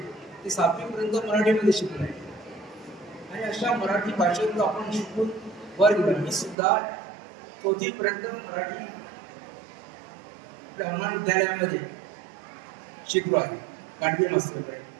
ते 7वीपर्यंत मराठीमध्ये शिकले आहे. आणि अशा मराठी भाषेतून आपण शिकून वर गेलो. मी सुद्धा 4थीपर्यंत मराठी आपल्या हनुमान विद्यालयामध्ये शिकलो आहे. गाडगे मास्तरकडे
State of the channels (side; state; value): left; drops out; at 6.6 s